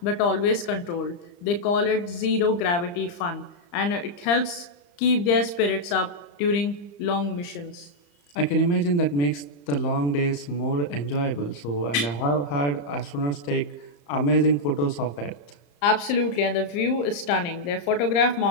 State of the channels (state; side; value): late; right; 35 ms